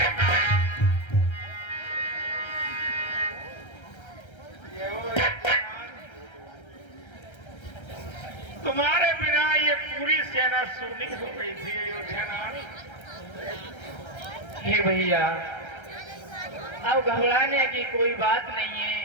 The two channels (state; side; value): late; right; 1.3 ms